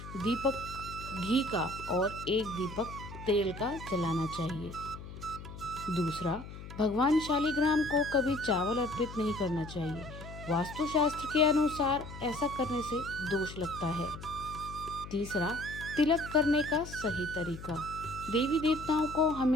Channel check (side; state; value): left; noise; hum, 12 dB below the sound